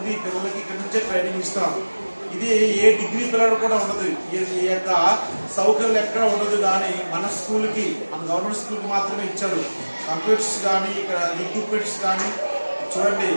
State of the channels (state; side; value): inverted; both; correlation -1.00